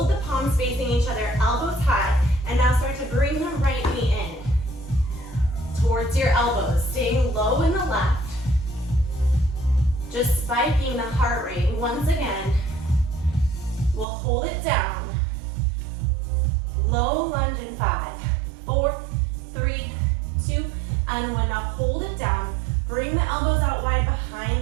the palms facing each other, elbows high, and now start to bring the right knee in towards your elbows, staying low in the left, just spiking the heart rate. Once again, we'll hold it down, low lunge in 5, 4, 3, 2, and 1. Now hold it down, bring the elbows out wide behind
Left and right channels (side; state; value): left; drops out; at 14.1 s